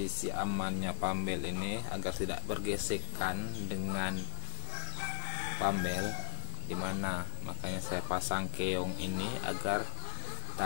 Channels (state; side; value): silent; right; 52 dB below the other